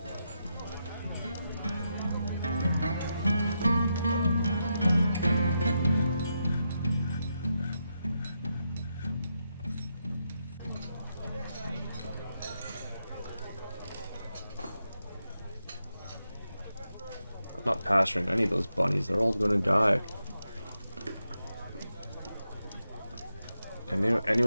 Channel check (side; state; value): both; inverted; correlation -0.85